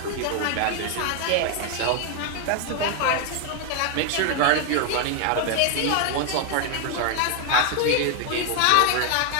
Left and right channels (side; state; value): both; different; correlation 0.01